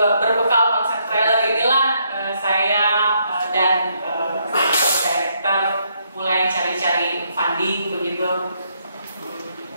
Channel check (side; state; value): both; inverted; correlation -0.74